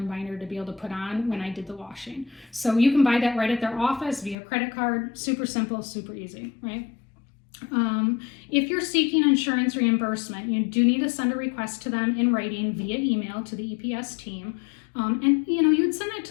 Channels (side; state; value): right; drops out; at 4.4 s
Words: binder to be able to put on when I did the washing. So you can buy that right at their office via credit card. Super simple, super easy, right? If you're seeking insurance reimbursement, you do need to send a request to them in writing via email to the EPS team. And you'd send it